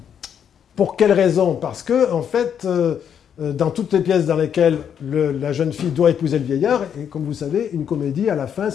Pour quelle raison? Parce que, en fait, dans toutes les pièces dans lesquelles la jeune fille doit épouser le vieillard, et comme vous savez, une comédie, à la fin,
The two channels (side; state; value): right; quieter; 8.4 dB